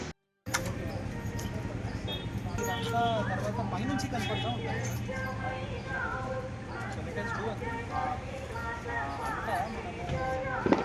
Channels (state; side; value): identical; both; correlation 1.00